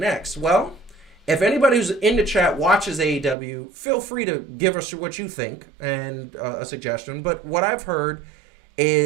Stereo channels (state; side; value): drops out; left; at 3.4 s